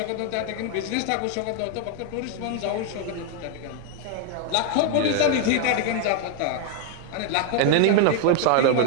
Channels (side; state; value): both; different; correlation 0.00